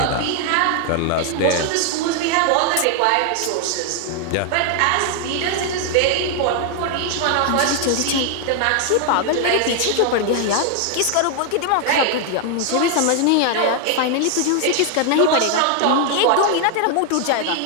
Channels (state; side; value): different; both; correlation 0.00